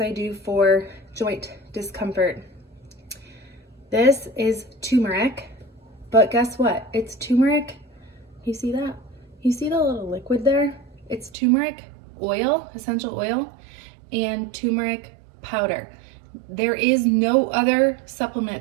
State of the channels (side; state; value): left; drops out; at 11.4 s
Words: I do for joint discomfort. This is turmeric, but guess what? It's turmeric. You see that? You see the little liquid there? It's turmeric oil, essential oil, and turmeric powder. There is no other supplement